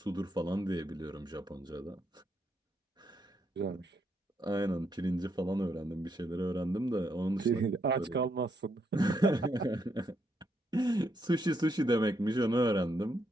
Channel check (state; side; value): normal; both; correlation 0.77